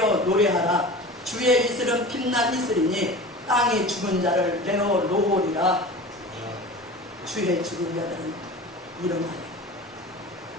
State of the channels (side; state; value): both; normal; correlation 0.35